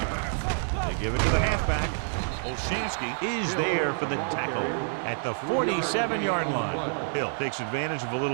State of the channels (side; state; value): left; silent; 59 dB below the other